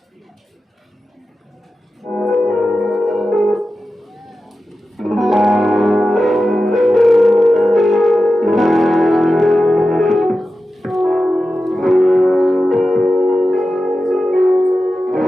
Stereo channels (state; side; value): normal; both; correlation 0.93